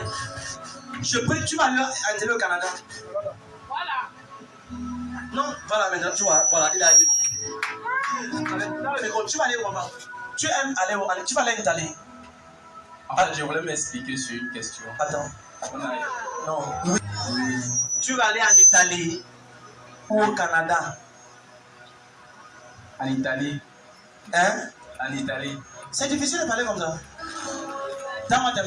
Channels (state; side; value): identical; both; correlation 1.00